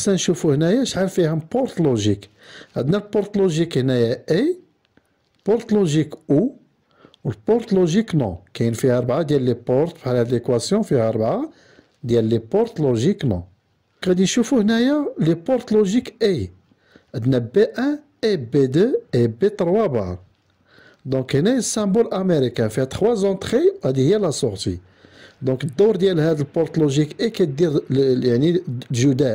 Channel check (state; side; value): identical; both; correlation 1.00